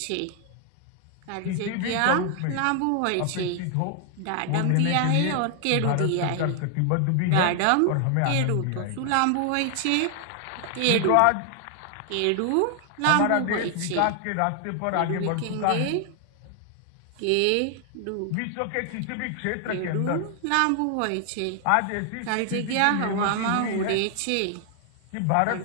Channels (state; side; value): different; both; correlation 0.00